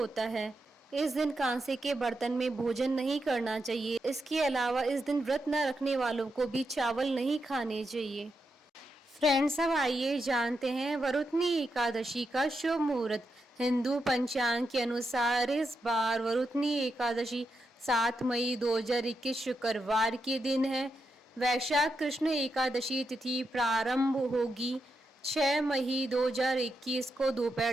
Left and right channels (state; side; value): normal; both; correlation 0.85